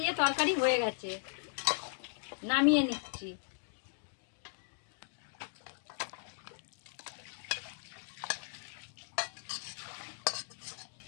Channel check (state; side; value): silent; right; digital silence